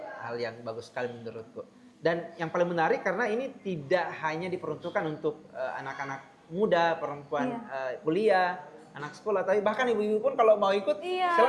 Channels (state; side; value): identical; both; correlation 1.00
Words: yang bagus sekali menurutku. Dan yang paling menarik karena ini tidak hanya diperuntukkan untuk anak-anak muda, perempuan kuliah, anak sekolah, tapi bahkan ibu-ibu pun kalau mau ikut